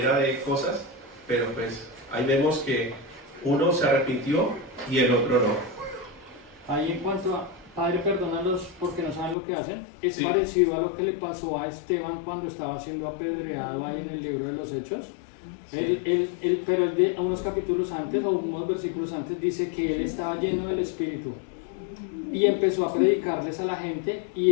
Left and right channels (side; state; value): right; drops out; at 9.3 s